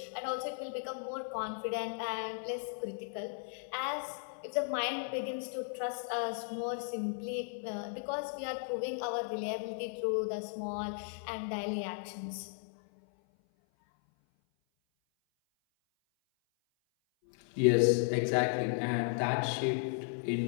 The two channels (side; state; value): right; silent; 54 dB below the other